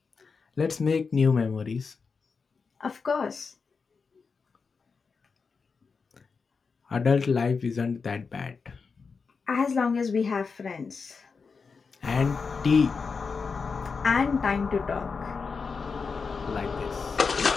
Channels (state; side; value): quieter; right; 5.1 dB